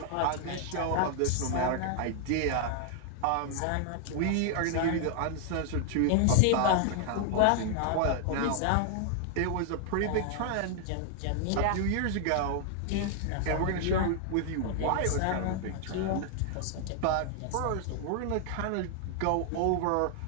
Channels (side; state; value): both; different; correlation 0.00